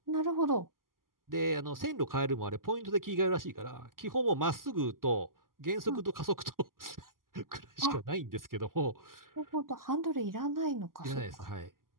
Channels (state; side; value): late; left; 0.91 ms